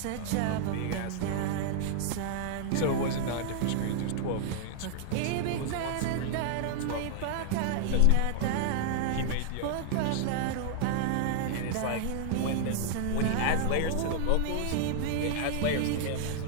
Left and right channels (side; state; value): both; different; correlation -0.01